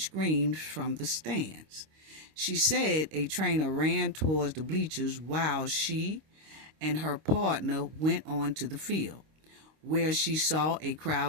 screams from the stands. She said a trainer ran towards the bleachers while she and her partner went on to the field, where she saw a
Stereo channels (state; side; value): late; left; 26 ms